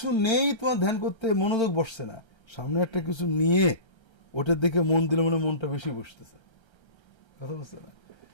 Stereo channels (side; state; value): right; late; 1.3 ms